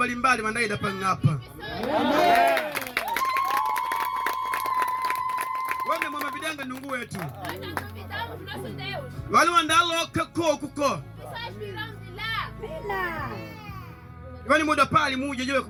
wandaida pangapa. Wame mama bidanga nungu wetu. Nós não duvidamos do nosso Deus. Wale wandalo kako kuko. Pessoas virão de lá. Wani muda pali muje jewe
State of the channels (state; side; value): identical; both; correlation 1.00